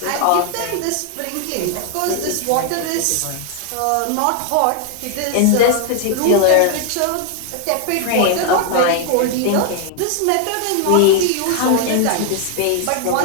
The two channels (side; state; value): both; different; correlation 0.00